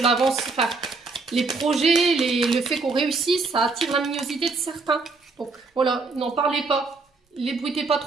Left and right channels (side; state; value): left; quieter; 4.0 dB